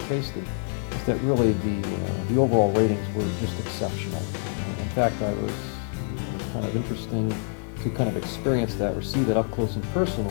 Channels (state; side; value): silent; right; 61 dB below the other